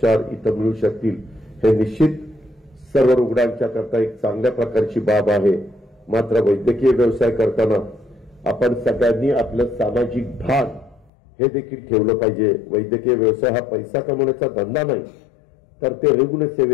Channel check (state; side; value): drops out; right; at 11.1 s